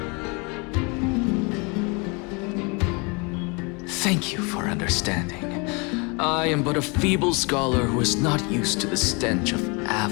Thank you for understanding. I am but a feeble scholar who is not used to the stench of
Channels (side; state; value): right; quieter; 30.7 dB